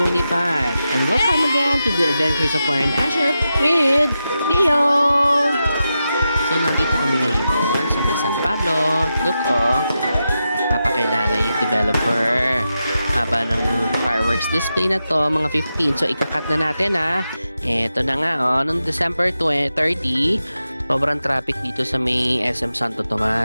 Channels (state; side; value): inverted; both; correlation -0.89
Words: And welcome again to the Adventures of Warren Asher with Neo! So, nandito kami ngayon sa may San Pablo. Look, oh! Papakilala yung developer. Haba ng fireworks display na to, mga 15. So, ikakat na natin, ha? Eto na nga, oh. Noong December 30, sobrang traffic dito sa may SM Santo